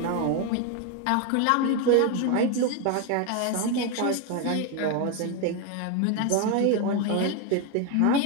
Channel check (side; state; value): both; different; correlation 0.01